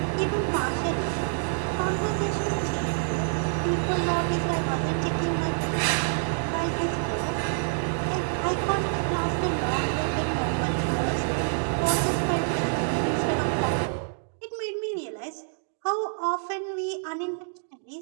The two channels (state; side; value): silent; left; digital silence